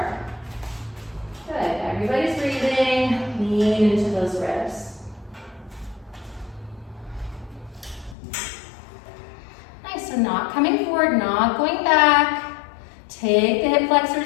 Good, everybody's breathing, lean into those ribs. Nice, so not coming forward, not going back. Take the hip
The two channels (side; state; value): right; drops out; at 8.2 s